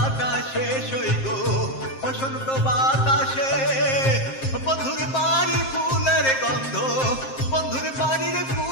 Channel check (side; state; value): right; late; 7.6 ms